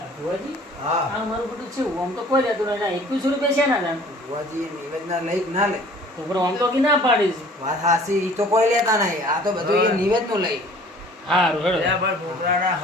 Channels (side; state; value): both; normal; correlation 0.50